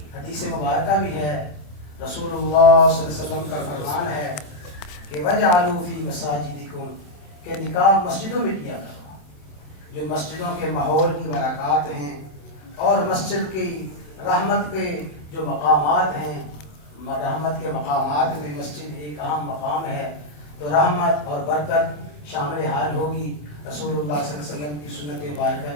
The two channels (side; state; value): right; late; 27 ms